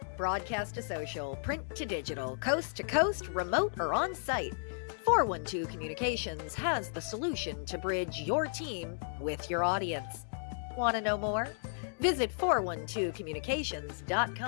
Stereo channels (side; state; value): right; silent; digital silence